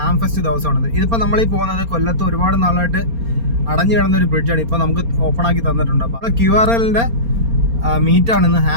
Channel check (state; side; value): late; left; 4.3 ms